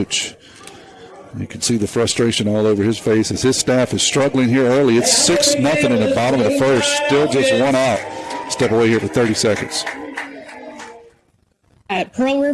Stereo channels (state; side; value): identical; both; correlation 1.00